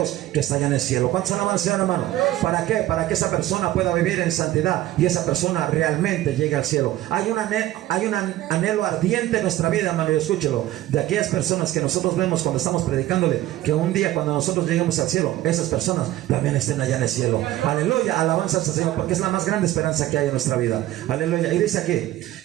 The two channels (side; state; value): left; quieter; 14.9 dB